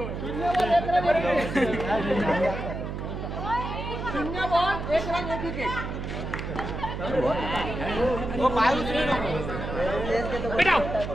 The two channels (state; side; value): noise; right; hum, 6 dB below the sound